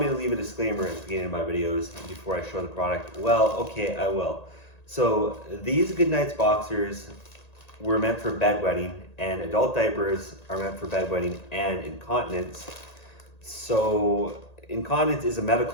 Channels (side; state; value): right; late; 1.9 ms